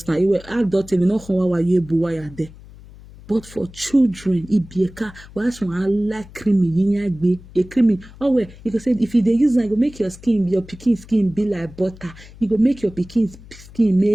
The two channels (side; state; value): left; noise; hum, 20 dB below the sound